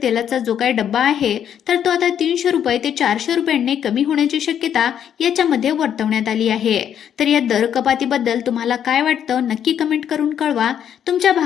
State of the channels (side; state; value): right; quieter; 9.2 dB